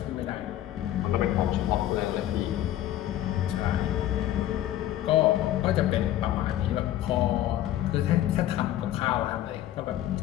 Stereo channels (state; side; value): quieter; right; 13.0 dB